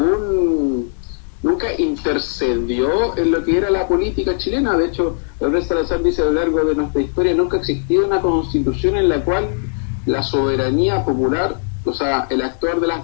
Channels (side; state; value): right; silent; digital silence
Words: nunca intercedió en lo que era la política chilena. De hecho, Gabriel Salazar dice a lo largo de nuestra historia, nunca ha existido una constitución en la cual la soberanía popular, o sea, el actuar de